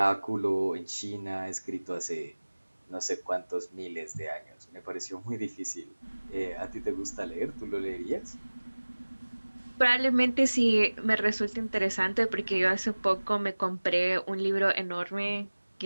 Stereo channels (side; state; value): both; inverted; correlation -1.00